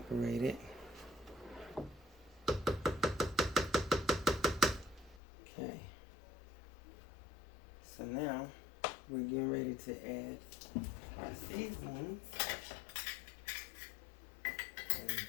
it. Okay, so now we're getting ready to add our seasonings. And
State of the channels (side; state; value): right; drops out; at 5.2 s